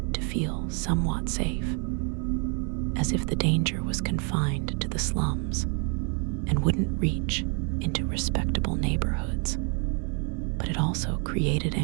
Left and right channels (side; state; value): left; quieter; 38.4 dB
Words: to feel somewhat safe, as if the danger was confined to the slums and wouldn't reach into respectable neighborhoods. But it also created